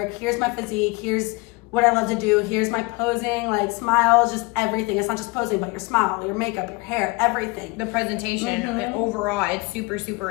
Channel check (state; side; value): quieter; right; 25.9 dB